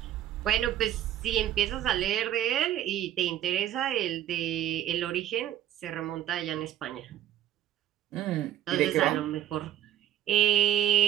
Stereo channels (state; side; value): quieter; left; 11.8 dB